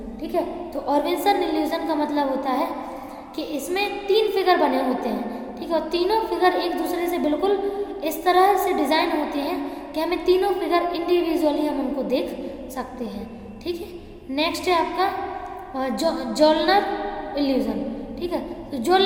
ठीक है। तो ऑर्वेसन इल्यूजन का मतलब होता है कि इसमें तीन फिगर बने होते हैं, ठीक है, और तीनों फिगर एक दूसरे से बिल्कुल इस तरह से डिज़ाइन होते हैं कि हमें तीनों फिगर इंडिविजुअली हम उनको देख सकते हैं, ठीक है। नेक्स्ट है आपका जोलनर इल्यूजन, ठीक है। तो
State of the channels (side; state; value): both; identical; correlation 1.00